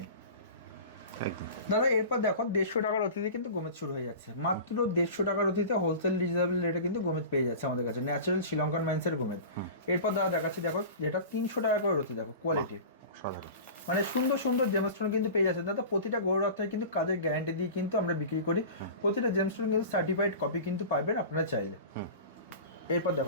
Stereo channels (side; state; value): both; inverted; correlation -0.35